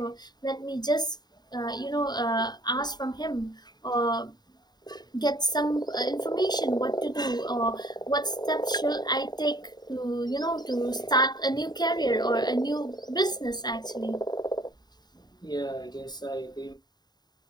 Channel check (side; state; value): right; late; 0.20 ms